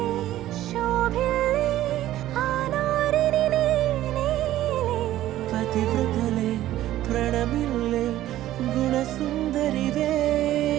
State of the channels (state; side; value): quieter; left; 14.0 dB